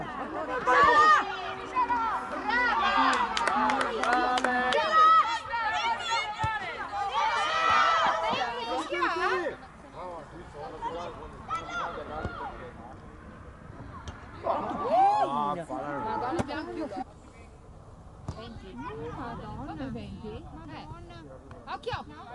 Madonna, abbiamo più 20. Madonna, 20? Madonna. Occhio!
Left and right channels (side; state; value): both; identical; correlation 1.00